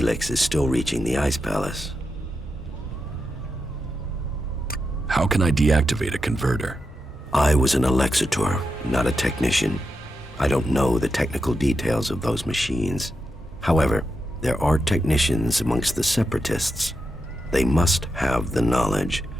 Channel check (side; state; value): both; normal; correlation 0.87